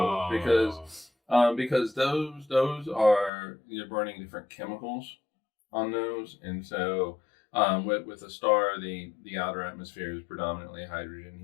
because those are you're burning different chemicals on those, and so with a star, the outer atmosphere is predominantly hydrogen,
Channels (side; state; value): right; drops out; at 3.3 s